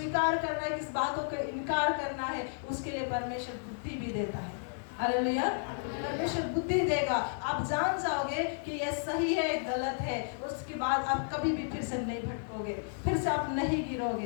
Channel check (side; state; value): right; silent; 56 dB below the other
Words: करना है, किस बातों को इनकार करना है, उसके लिए परमेश्वर बुद्धि भी देता है। हालेलुया। परमेश्वर बुद्धि देगा, आप जान जाओगे कि यह सही है गलत है, उसके बाद आप कभी भी फिर से नहीं भटकोगे, फिर से आप नहीं